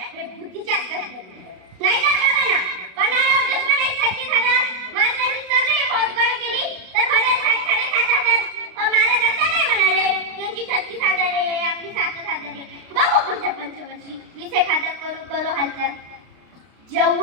हे बुद्धीच्याच कसरतीवर. नाहीतर बघा ना, पन्हाळ्यावर दुश्मन 36,000, महाराजांनी सगळी फौज गोळा केली तर भरेल 7,500. महाराज असं नाही म्हणाले त्यांची 36,000 आहे आपली 7,000 आहे.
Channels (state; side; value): late; left; 32 ms